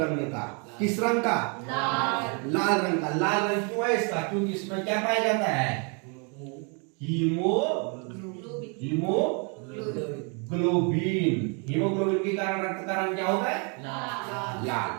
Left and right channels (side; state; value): left; quieter; 35.9 dB